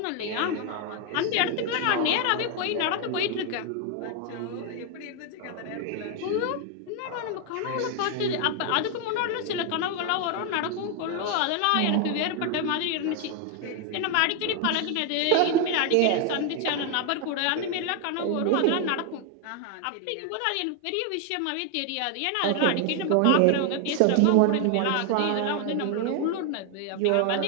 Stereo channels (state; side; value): different; both; correlation 0.01